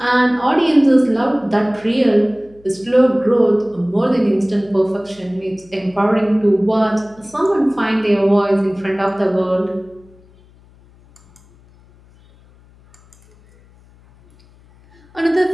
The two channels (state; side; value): noise; left; hum, 28 dB below the sound